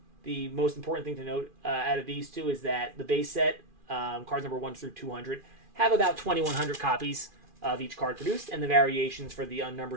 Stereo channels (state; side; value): late; left; 2.4 ms